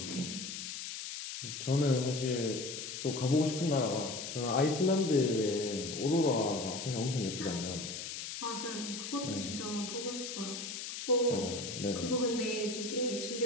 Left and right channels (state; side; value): noise; left; hiss, 7 dB below the sound